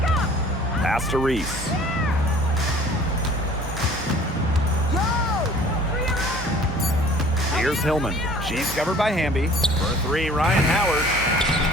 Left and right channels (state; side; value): normal; both; correlation 0.50